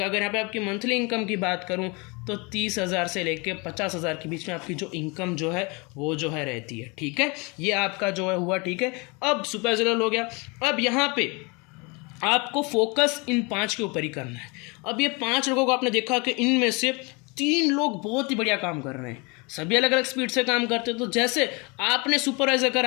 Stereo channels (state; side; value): quieter; right; 28.9 dB